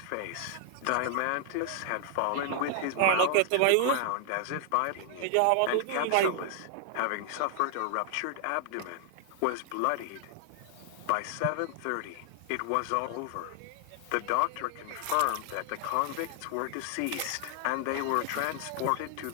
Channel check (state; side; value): different; both; correlation 0.00